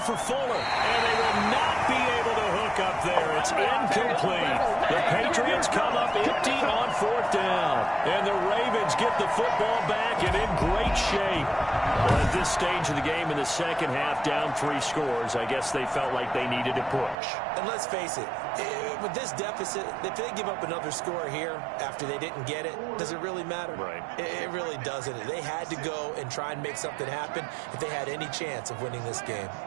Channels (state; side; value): drops out; left; at 17.2 s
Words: Fuller, and they will not be able to hook up there. It's incomplete. The Patriots come up empty on 4th down, and the Ravens get the football back and in great shape. Well, at this stage of the game in the second half, down 3 scores, I guess they felt like they needed to push. And let's face it, with this deficit, if they give up another score here after they didn't get it, does it really matter? Right. It really doesn't. They had to go and try and make something happen if they had any chance of winning this game.